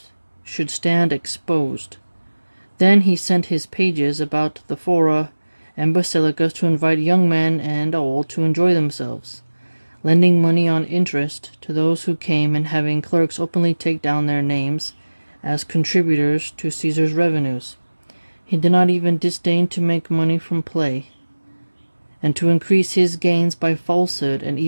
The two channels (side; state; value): both; inverted; correlation -1.00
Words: should stand exposed. Then he sent his pages about the fora and basilicas to invite young men and old to enjoy themselves, lending money on interest to those who came and having clerks openly take down their names as contributors to Caesar's revenues. He did not even disdain to make money from play, and to increase his gains by falsehood and